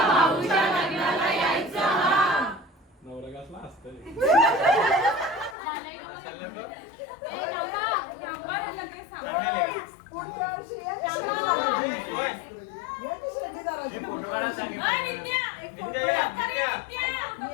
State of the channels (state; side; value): drops out; right; at 5.6 s